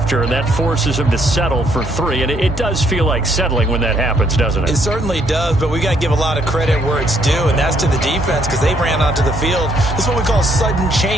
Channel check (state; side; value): normal; both; correlation 0.69